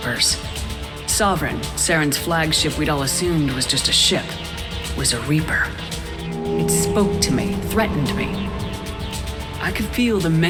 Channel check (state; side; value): identical; both; correlation 1.00